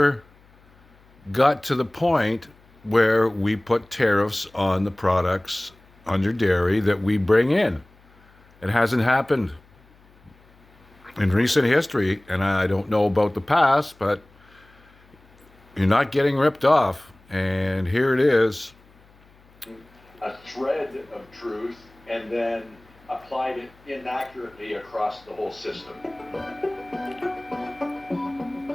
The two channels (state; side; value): noise; left; hum, 29 dB below the sound